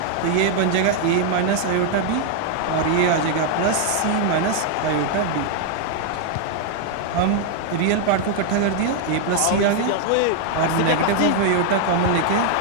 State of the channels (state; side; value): different; both; correlation 0.00